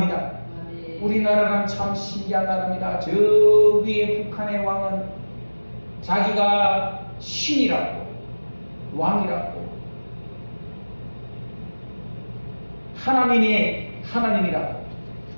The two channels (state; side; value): inverted; both; correlation -1.00